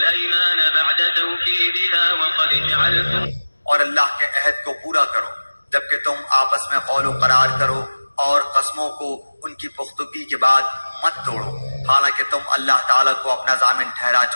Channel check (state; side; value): inverted; both; correlation -1.00